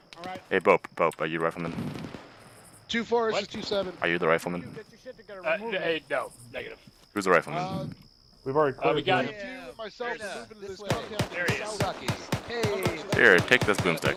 Alright. Hey, Bope, are you the rifleman? 2-4 versus 2-7. Are you the rifleman? Hey, no, negative. Who's the rifleman? We've already cleared we got it. Myself moving to this compound. There he is. Hey. Here, take this boomstick.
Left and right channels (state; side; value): identical; both; correlation 1.00